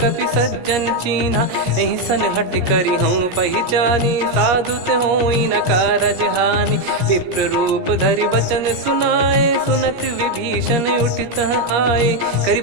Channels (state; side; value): late; left; 17 ms